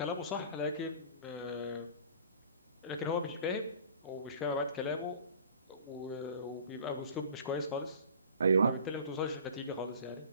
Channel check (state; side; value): inverted; both; correlation -0.45